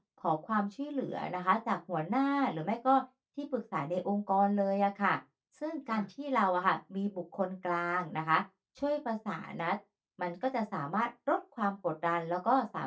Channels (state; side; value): identical; both; correlation 1.00